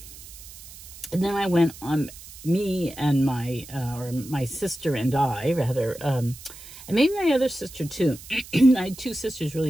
went on, me and my sister and I, rather, and maybe my other sister too. I had two sisters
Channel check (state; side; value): noise; right; hiss, 17 dB below the sound